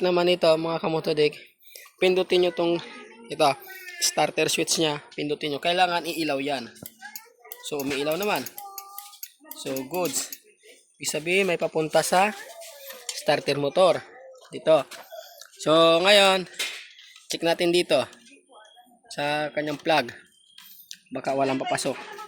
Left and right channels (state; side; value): identical; both; correlation 1.00